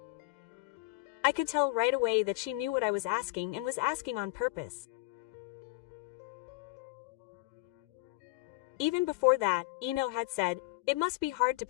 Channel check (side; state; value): right; quieter; 21.9 dB